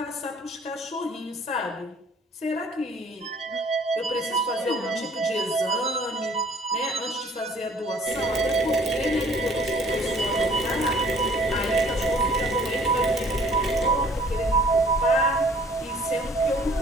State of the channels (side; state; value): both; normal; correlation 0.55